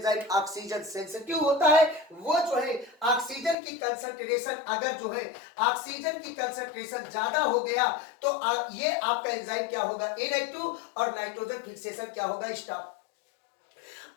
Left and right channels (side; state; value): right; drops out; at 3.6 s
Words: ऑक्सीजन सेंसिटिव होता है। वो जो है ऑक्सीजन की कंसंट्रेशन, अगर जो है ऑक्सीजन की कंसंट्रेशन ज्यादा हो गया तो ये आपका एंजाइम क्या होगा, इनएक्टिव, और नाइट्रोजन फिक्सेशन क्या होगा, स्टॉप।